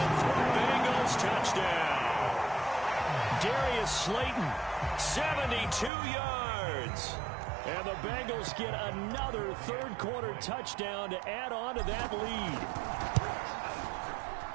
for a Bengals touchdown. Darius Slayton, 72 yards. And the Bengals get another 3rd quarter touchdown to add on to that lead.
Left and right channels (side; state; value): left; drops out; at 5.9 s